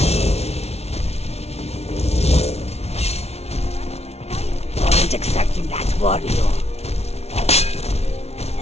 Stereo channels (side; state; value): right; late; 0.31 ms